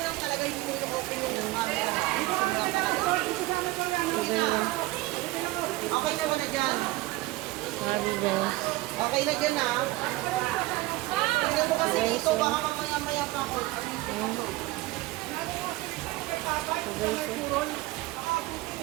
Okay naman na dyan. Grabe guys. Okay na dyan ha. Tingnan mo kasi dito, baka mamaya-maya pa ako.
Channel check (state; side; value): quieter; left; 19.4 dB